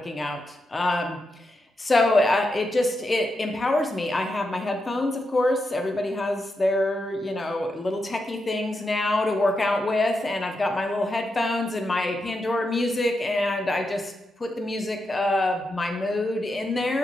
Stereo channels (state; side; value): normal; both; correlation 0.86